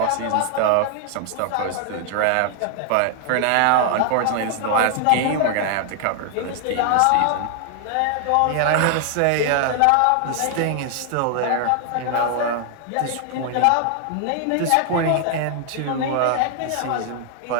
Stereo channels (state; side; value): different; both; correlation 0.00